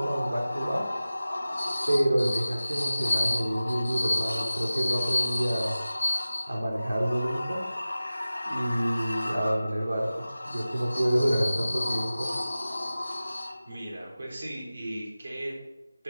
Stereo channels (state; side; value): inverted; both; correlation -0.97